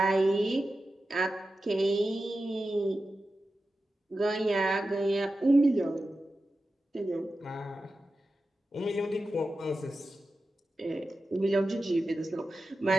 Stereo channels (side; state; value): both; normal; correlation 0.92